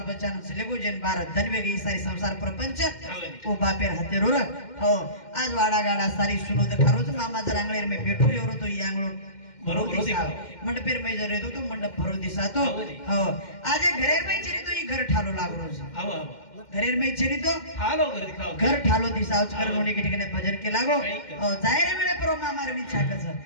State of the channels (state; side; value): late; right; 2.1 ms